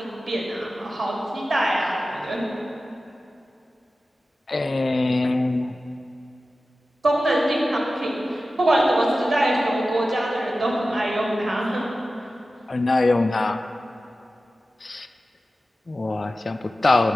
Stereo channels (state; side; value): normal; both; correlation 0.94